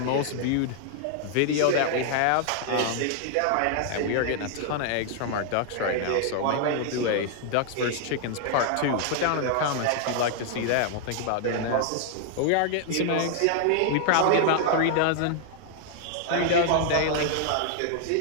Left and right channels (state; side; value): different; both; correlation 0.00